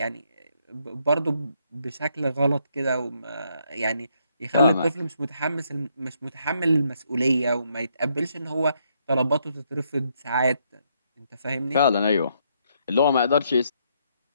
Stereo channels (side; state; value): both; inverted; correlation -0.74